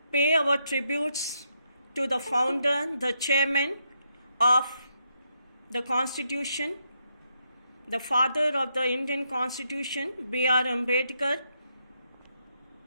pay our tributes to the founder, the chairman of the Constitution, the father of the Indian Constitution, B.R. Ambedkar.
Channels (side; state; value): both; inverted; correlation -0.80